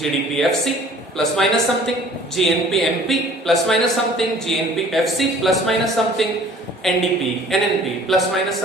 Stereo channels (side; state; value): both; normal; correlation 0.51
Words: FC plus minus something, GNP MP plus minus something, GNP FC plus minus something, NDP NNP plus minus